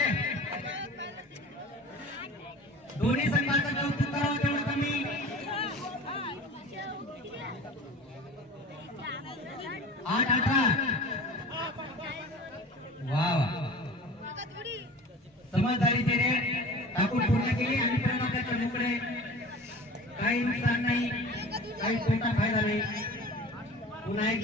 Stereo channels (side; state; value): both; normal; correlation 0.39